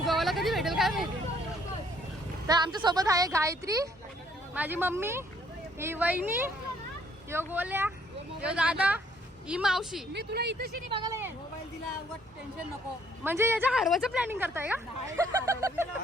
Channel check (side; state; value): both; normal; correlation 0.65